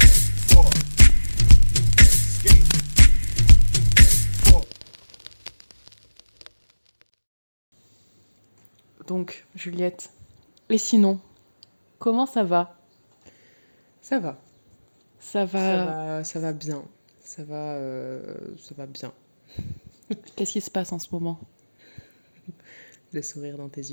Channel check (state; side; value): inverted; both; correlation -1.00